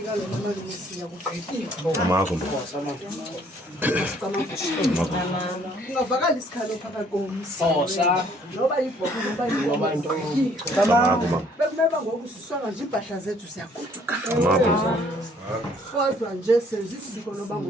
lo mama nomisiya kugqitywa. AMAGQIRHA. Ungavakala isikhalo phakathi komsi. Noba yibhobo noba into. AMAGQIRHA. Bekumeba ngoku sisonga nje impahla zethu siyagoduka. AMAGQIRHA. Kodwa nje senza isiko loba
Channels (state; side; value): normal; both; correlation 0.61